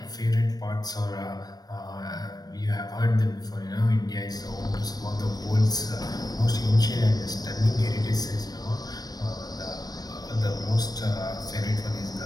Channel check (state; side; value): late; right; 0.19 ms